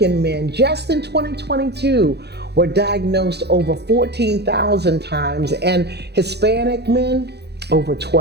men just in 2022 were diagnosed over 14,000 times, and Hispanic men over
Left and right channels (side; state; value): left; late; 0.48 ms